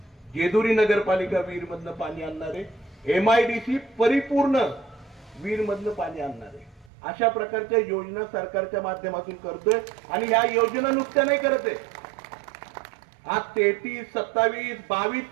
जेजुरी नगरपालिका वीरमधनं पाणी आणणार आहे, MIDC परिपूर्ण वीरमधनं पाणी आणणार आहे. अशा प्रकारच्या योजना सरकारच्या माध्यमातून करतोय आणि ह्या योजना नुसत्या नाही करत आहे. आज 33, 27, 22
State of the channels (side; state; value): left; drops out; at 6.9 s